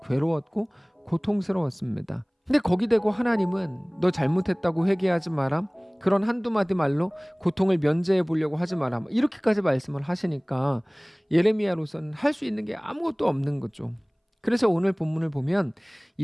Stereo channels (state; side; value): identical; both; correlation 1.00